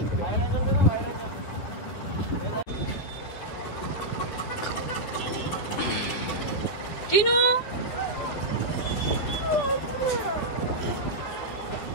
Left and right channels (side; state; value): right; late; 10 ms